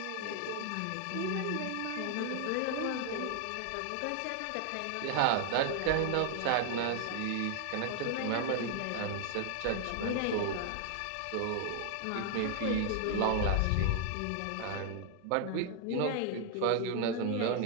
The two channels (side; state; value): both; different; correlation 0.00